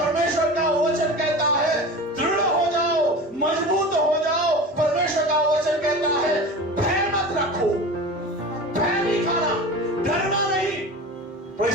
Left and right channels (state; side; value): normal; both; correlation 0.33